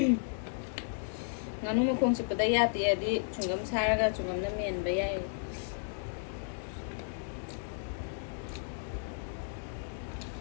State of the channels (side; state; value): right; silent; digital silence